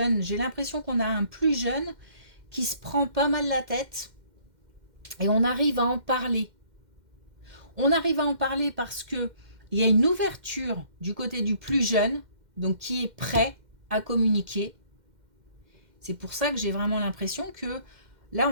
J'ai l'impression qu'on a un plus jeune qui se prend pas mal la tête et on arrive à en parler. On arrive à en parler parce que il y a une ouverture du côté du plus jeune, donc qui est prêt à communiquer. C'est pour ça que j'ai vraiment l'impression que là,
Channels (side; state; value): left; late; 2.1 ms